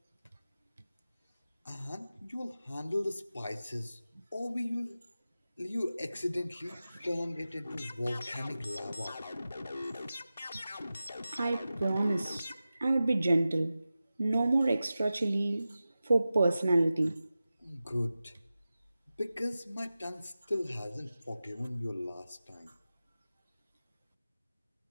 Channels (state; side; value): inverted; both; correlation -0.94